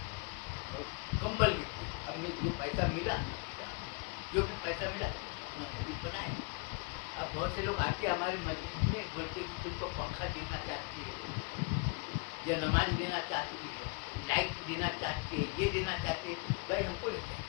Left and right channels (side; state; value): right; quieter; 30.5 dB